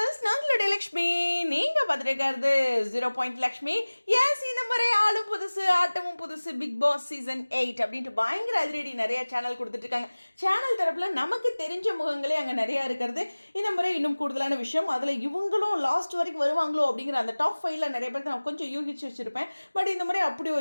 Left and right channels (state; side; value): inverted; both; correlation -1.00